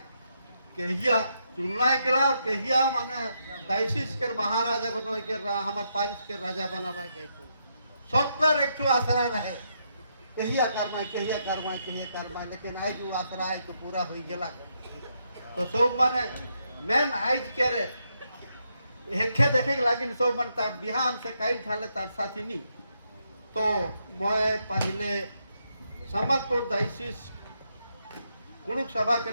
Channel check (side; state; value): both; inverted; correlation -0.79